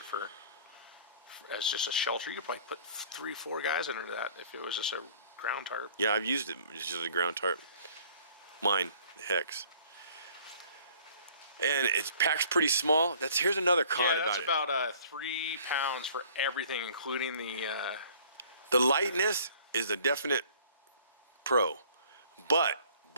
as just a shelter. You could probably put 3-4 guys under that if it was just a ground tarp. Yeah, I've used it just as a ground tarp. Mine, the hex. And it packs pretty small. Here's another con about it. Yeah, that's about 3 pounds for everything, including the... The lightness is a definite pro, but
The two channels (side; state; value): both; inverted; correlation -0.53